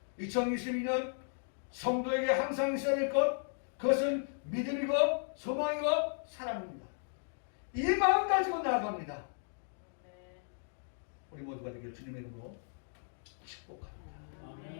2022년 성도에게 항상 있어야 될 것, 그것은 믿음이고 소망이고 사랑입니다. 이 마음 가지고 나아갑니다. 우리 모두가 되길 주님의 이름으로 축복합니다.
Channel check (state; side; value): silent; right; digital silence